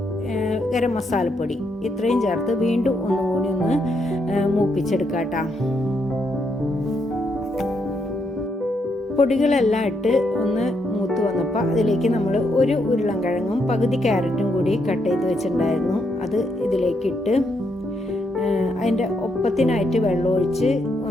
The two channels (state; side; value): normal; both; correlation 0.78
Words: ഗരം മസാലപ്പൊടി ഇത്രയും ചേർത്ത് വീണ്ടും ഒന്നുകൂടി ഒന്ന് മൂപ്പിച്ചെടുക്കാം കേട്ടോ. പൊടികളെല്ലാം ഇട്ട് ഒന്ന് മൂത്ത് വന്നപ്പോൾ അതിലേക്ക് നമ്മൾ ഒരു ഉരുളൻകിഴങ്ങും പകുതി ക്യാരറ്റും കൂടി കട്ട് ചെയ്ത് വെച്ചിട്ടുണ്ടായിരുന്നു. അത് ഇതിലേക്ക് ഇട്ട് അതിൻ്റെ ഒപ്പത്തിനായിട്ട് വെള്ളമൊഴിച്ച്